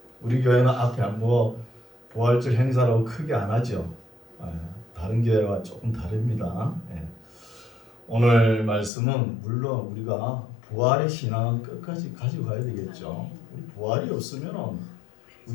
우리 교회는 앞에 부활절 행사라고 크게 안 하죠. 다른 교회와 조금 다릅니다. 오늘 말씀은 물론 우리가 부활의 신앙은 끝까지 가지고 가야 되겠죠. 우리 부활이 없으면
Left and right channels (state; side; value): drops out; right; at 8.9 s